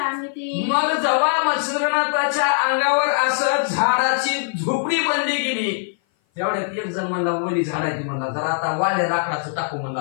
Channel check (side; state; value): right; silent; 57 dB below the other